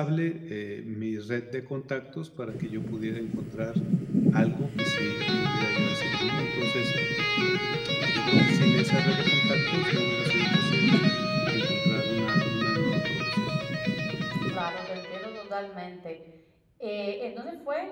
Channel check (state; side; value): identical; both; correlation 1.00